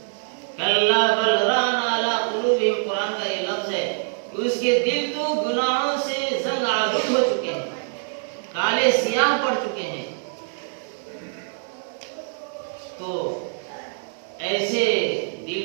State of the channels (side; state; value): left; silent; 61 dB below the other